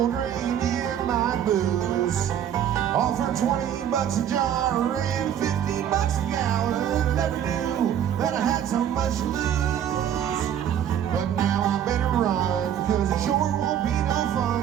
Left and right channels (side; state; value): left; quieter; 9.8 dB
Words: drinking my booze? Offered $20 a jar and $50 a gallon. Never knew that I had so much to lose. But now I better run, cause it sure won't be no